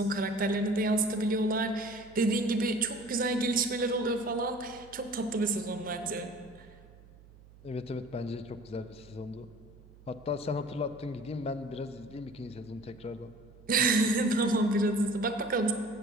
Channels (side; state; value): right; noise; hum, 23 dB below the sound